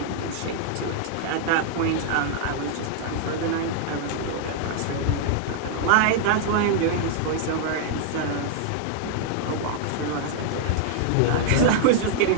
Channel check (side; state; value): both; different; correlation -0.01